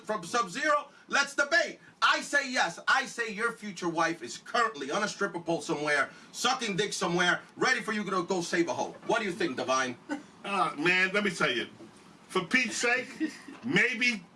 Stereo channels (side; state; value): both; identical; correlation 1.00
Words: Sub-Zero. Let's debate. I say yes. I say your future wife is currently on a stripper pole somewhere, sucking dick somewhere, ready for you to go save a hoe. What do you think, Divine? Man, let me tell you. For Pete's sake, maybe